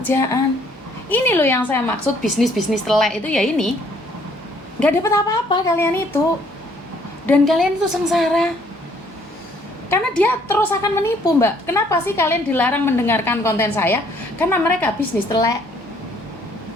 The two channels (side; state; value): both; normal; correlation 0.63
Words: Ini loh yang saya maksud bisnis telek itu ya ini. Gak dapat apa-apa kalian itu. Dan kalian itu sengsara. Karena dia terus akan menipu, Mbak. Kenapa sih kalian dilarang mendengarkan konten saya? Karena mereka bisnis telek.